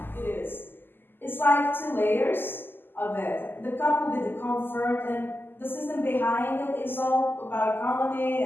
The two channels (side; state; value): right; late; 0.096 ms